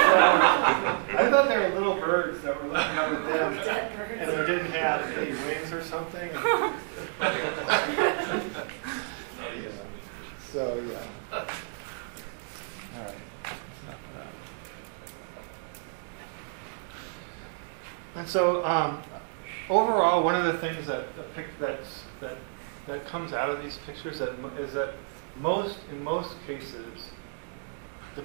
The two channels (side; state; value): left; silent; 58 dB below the other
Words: thought they were little birds that were looking up at them Dead birds. and they didn't have any wings or something. So, yeah. All right. And so, overall, one of the things that comes out of these pictures is that in most cases, the